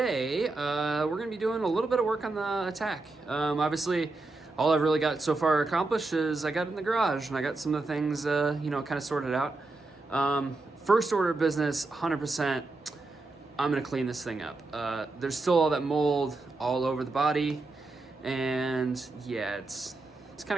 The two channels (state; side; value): quieter; left; 3.3 dB